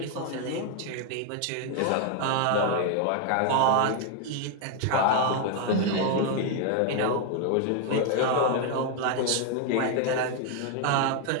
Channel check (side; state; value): both; different; correlation 0.01